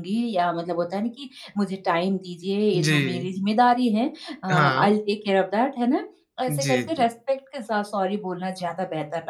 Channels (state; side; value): identical; both; correlation 1.00